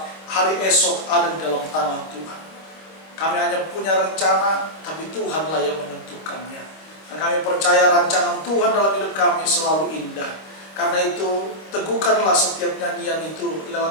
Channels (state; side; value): late; right; 26 ms